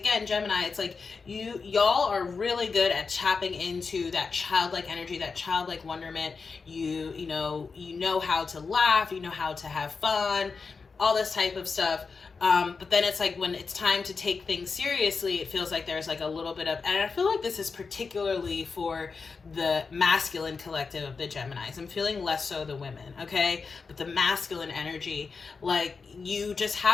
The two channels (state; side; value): quieter; right; 4.8 dB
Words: Gemini, it's like y'all are really good at tapping into that childlike energy, that childlike wonderment. You know how to laugh, you know how to have fun, all this type of stuff. But then it's like when it's time to take things seriously, it feels like there's like a little bit of, and I feel like this is particularly for the masculine collective of the Geminis. I'm feeling less so the women, okay? But the masculine energy, like you just